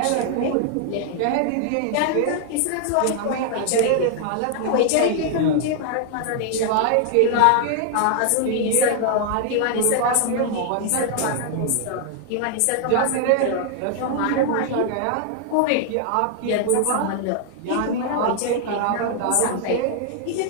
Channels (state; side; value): different; both; correlation 0.00